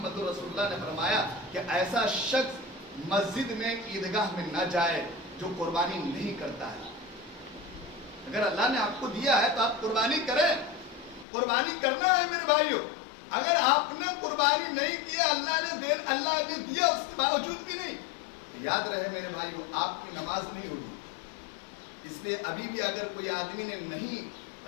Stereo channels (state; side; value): drops out; right; at 11.2 s